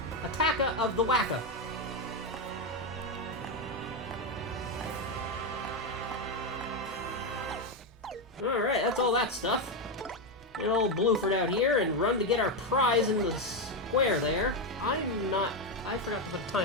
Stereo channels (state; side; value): normal; both; correlation 0.08